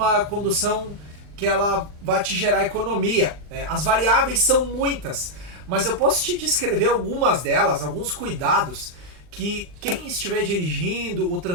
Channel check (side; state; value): left; late; 40 ms